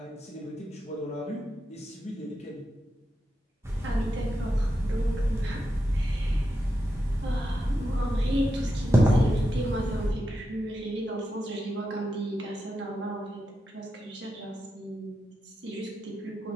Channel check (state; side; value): normal; both; correlation 0.88